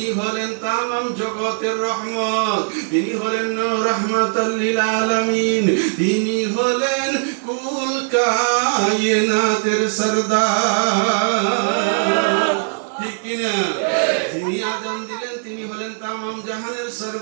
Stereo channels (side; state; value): left; silent; digital silence